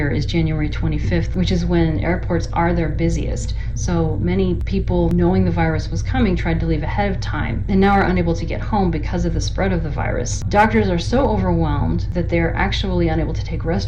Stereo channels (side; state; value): both; identical; correlation 1.00